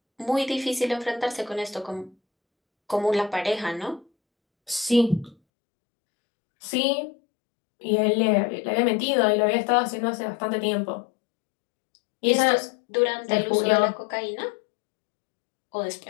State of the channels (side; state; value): right; drops out; at 5.4 s